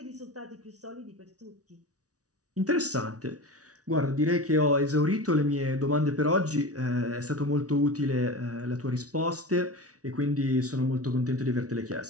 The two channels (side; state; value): left; late; 0.67 ms